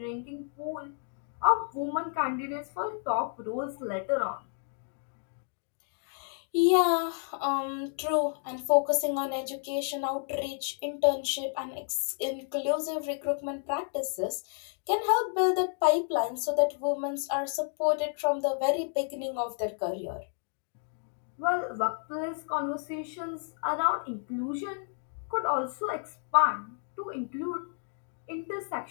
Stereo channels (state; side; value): silent; right; 57 dB below the other